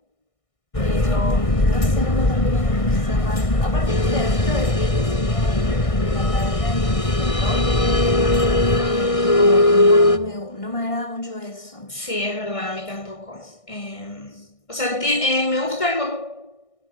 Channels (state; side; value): late; right; 1.6 ms